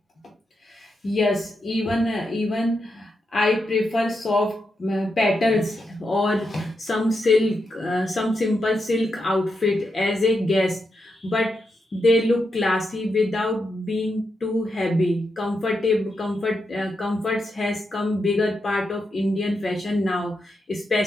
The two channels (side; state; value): both; normal; correlation 0.84